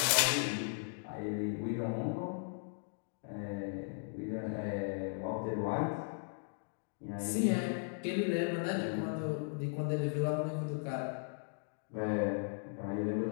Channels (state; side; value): silent; right; digital silence